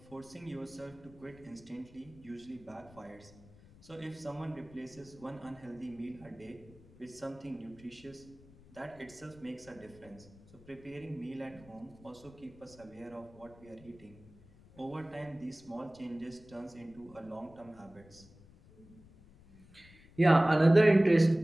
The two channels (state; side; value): noise; left; rumble, 23 dB below the sound